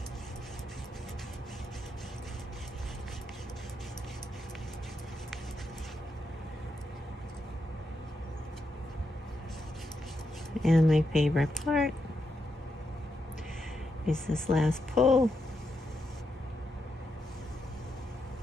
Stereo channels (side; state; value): both; normal; correlation 0.83